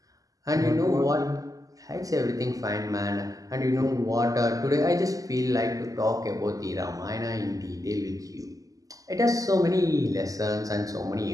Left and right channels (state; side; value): late; left; 0.17 ms